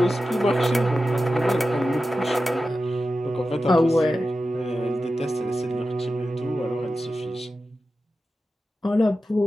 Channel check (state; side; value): normal; both; correlation 0.92